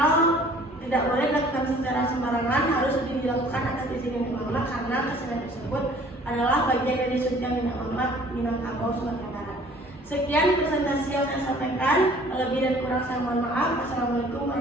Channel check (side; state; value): both; normal; correlation 0.53